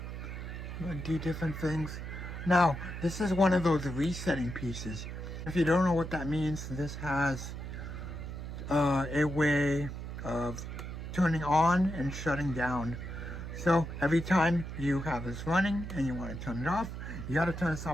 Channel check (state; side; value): noise; right; hum, 7 dB below the sound